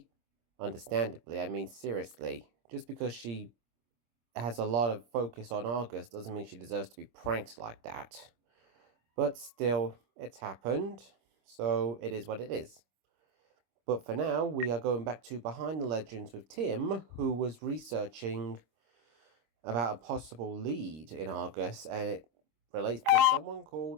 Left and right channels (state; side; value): late; left; 26 ms